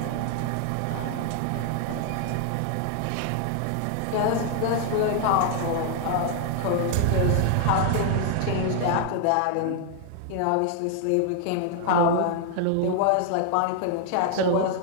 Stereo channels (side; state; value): both; different; correlation 0.00